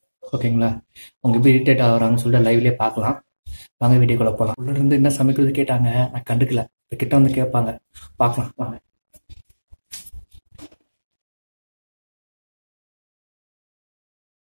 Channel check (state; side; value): inverted; both; correlation -1.00